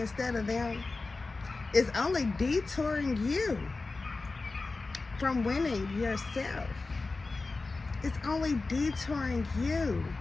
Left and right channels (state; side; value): quieter; right; 3.7 dB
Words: of them is only detouring you from winning yourself. It's only detouring you